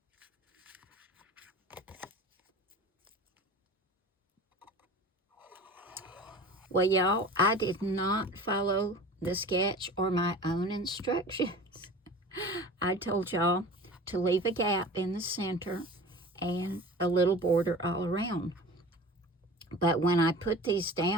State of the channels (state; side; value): normal; both; correlation 0.38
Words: Well, y'all, I did not follow the sketch or my own instructions. I told y'all to leave a gap in the center and a little border all around. But when I put these